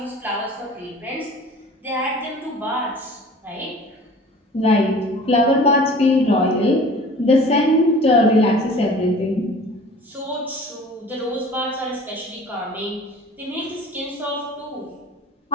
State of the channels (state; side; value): normal; both; correlation 0.44